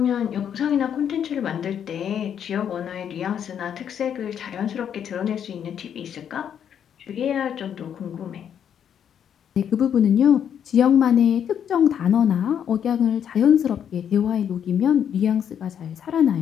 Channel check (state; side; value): quieter; right; 8.7 dB